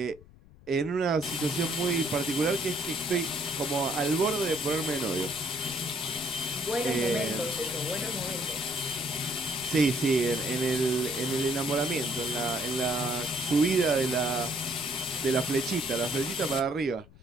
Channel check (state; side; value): noise; left; rumble, 23 dB below the sound